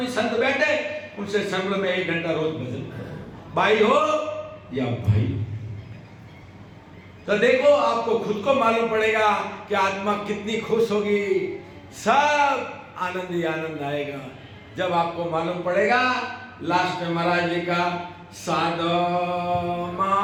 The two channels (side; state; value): both; identical; correlation 1.00